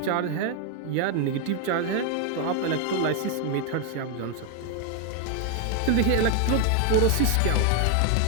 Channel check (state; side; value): different; both; correlation 0.01